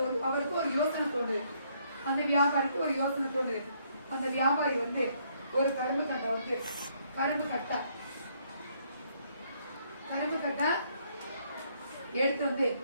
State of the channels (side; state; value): both; inverted; correlation -0.69